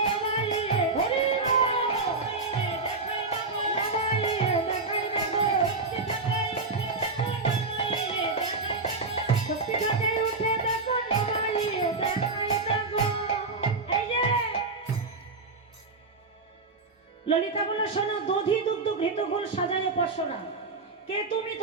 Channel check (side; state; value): left; quieter; 3.7 dB